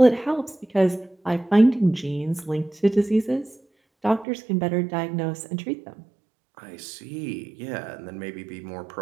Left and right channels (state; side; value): drops out; left; at 4.2 s